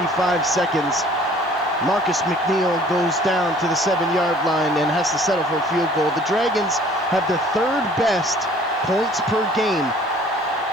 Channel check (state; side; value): normal; both; correlation 0.53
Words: seconds. Marcus McNeil goes down to the 7-yard line and has to settle for a field goal. The Dragons have the 3rd best points per game